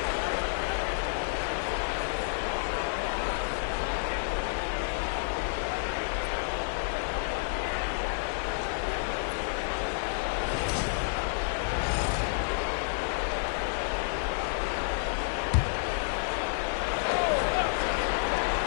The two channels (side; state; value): right; silent; digital silence